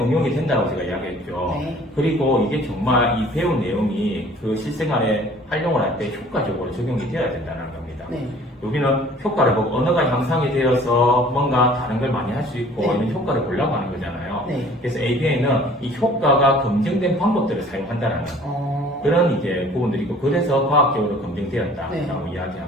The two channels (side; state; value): both; normal; correlation 0.51